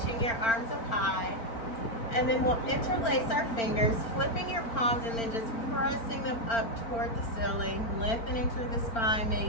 your arms up high. And then we'll interlace our fingers, flipping your palms and then just pressing them up toward the ceiling, lengthening through the spine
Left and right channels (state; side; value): late; right; 4.4 ms